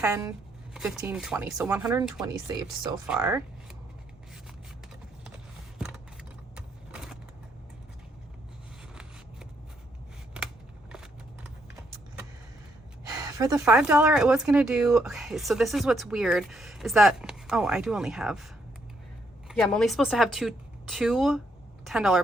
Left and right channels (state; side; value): normal; both; correlation 0.74